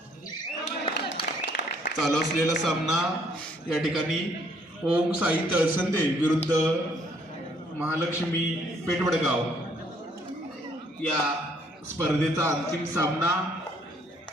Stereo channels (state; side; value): normal; both; correlation 0.65